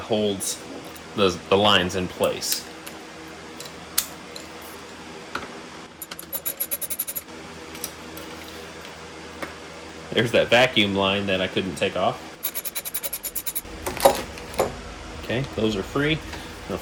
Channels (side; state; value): both; identical; correlation 1.00